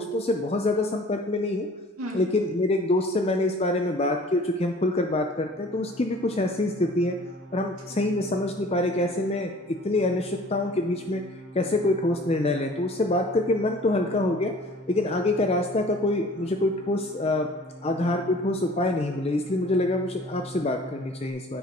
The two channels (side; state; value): both; normal; correlation 0.49